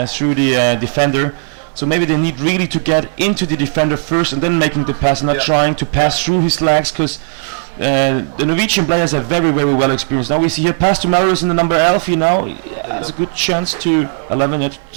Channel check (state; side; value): silent; left; 67 dB below the other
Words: through the defender. So maybe they need really to get into the defender first and then making the pass, not trying to pass through his legs, because the Norwegian players are very, very well experienced. Now we see here pass to Marius in the number 11 now. Has a good chance to 11